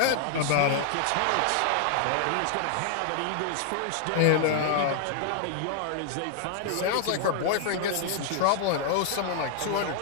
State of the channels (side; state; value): both; different; correlation 0.00